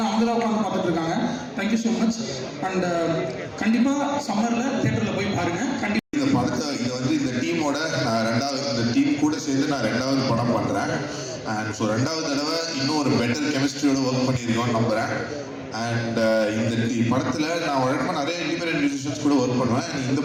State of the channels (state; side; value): identical; both; correlation 1.00